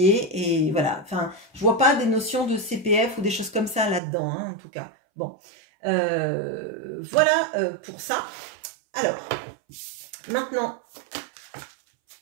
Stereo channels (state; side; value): drops out; left; at 4.0 s